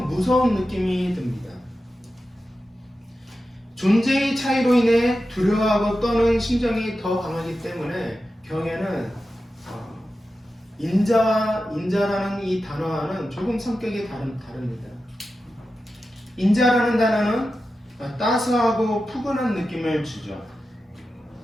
무서운 느낌이 듭니다. 존재의 차이로 인해 두려워하고 떠는 심정이 더 강하기 때문에 경외는 인자라는 이 단어와는 조금 성격이 다릅니다. 인자라는 단어는 따스하고 푸근한 느낌을 주죠.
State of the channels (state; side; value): normal; both; correlation 0.92